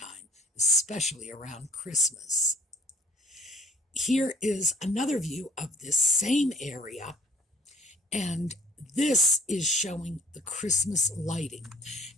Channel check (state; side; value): normal; both; correlation 0.56